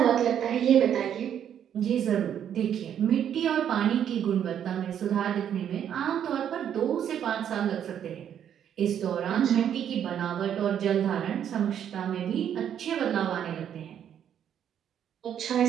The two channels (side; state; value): left; quieter; 9.4 dB